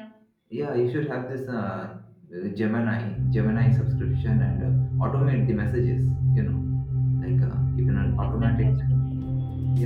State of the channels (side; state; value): both; identical; correlation 1.00